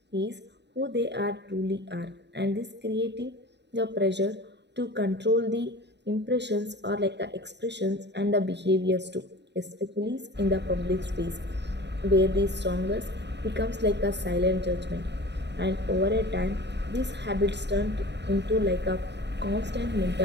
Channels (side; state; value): left; late; 0.50 ms